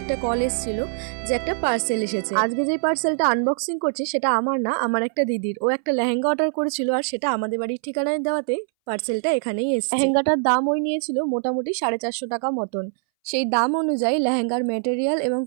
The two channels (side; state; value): left; silent; 62 dB below the other